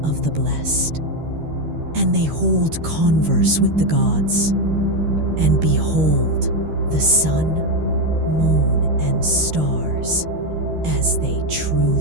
of the blessed. And they hold converse with the gods, and behold the sun, moon, and stars as they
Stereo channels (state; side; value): late; left; 13 ms